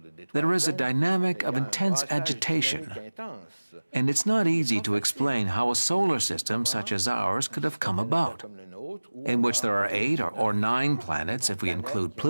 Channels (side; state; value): both; inverted; correlation -1.00